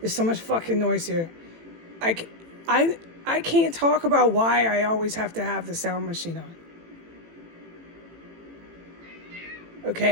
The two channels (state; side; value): late; left; 18 ms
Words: so much fucking noise here. I can't talk about why I always have to have the sound machine on.